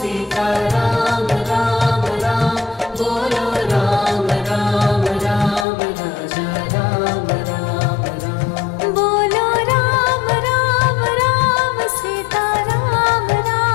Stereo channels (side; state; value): right; drops out; at 5.7 s